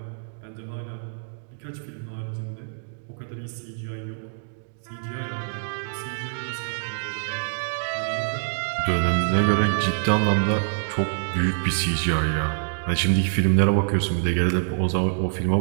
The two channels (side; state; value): left; silent; digital silence